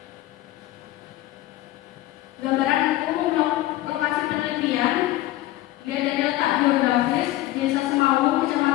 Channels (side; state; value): right; quieter; 15.8 dB